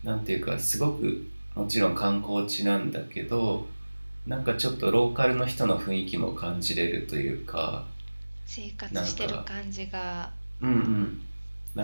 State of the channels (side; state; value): both; inverted; correlation -1.00